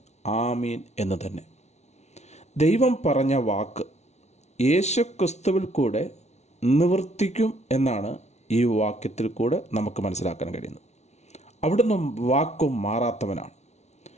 ആമീൻ എന്ന് തന്നെ. ദൈവം പറഞ്ഞ വാക്ക് യേശുക്രിസ്തുവിൽ കൂടെ നിവർത്തിക്കും എന്നാണ് ഈ വാക്യത്തിൽ കൂടെ നമുക്ക് മനസ്സിലാക്കാൻ കഴിയുന്നത്. അവിടുന്ന് വാക്കും മാറാത്തവനാണ്.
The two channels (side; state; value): right; late; 0.32 ms